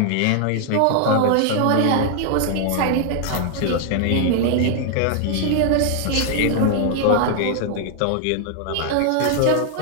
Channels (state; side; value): different; both; correlation 0.00